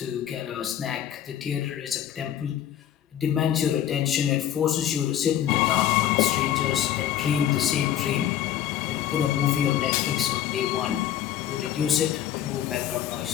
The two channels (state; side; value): quieter; right; 11.0 dB